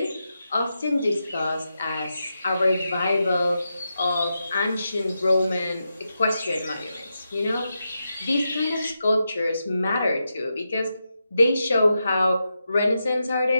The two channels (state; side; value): inverted; both; correlation -0.87